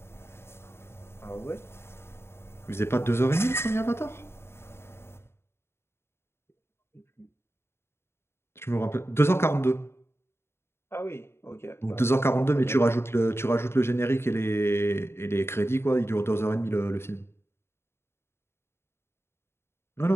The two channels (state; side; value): late; right; 0.12 ms